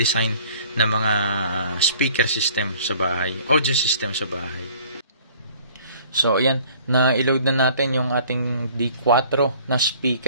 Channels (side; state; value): both; inverted; correlation -0.53